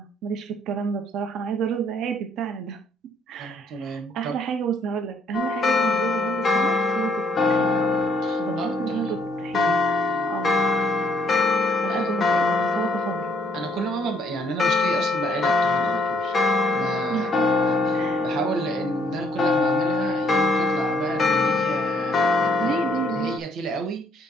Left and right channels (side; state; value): both; normal; correlation 0.68